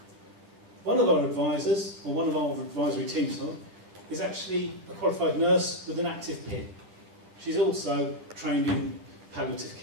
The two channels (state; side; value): late; left; 10 ms